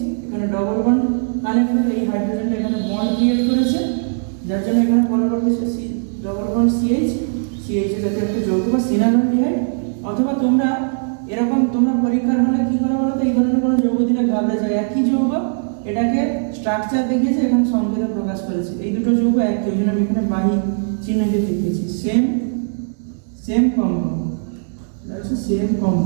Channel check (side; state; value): left; silent; digital silence